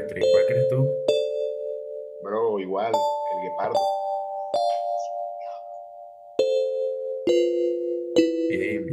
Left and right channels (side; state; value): both; identical; correlation 1.00